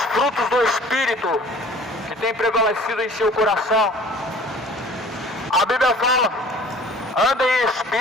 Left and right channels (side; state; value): both; normal; correlation 0.48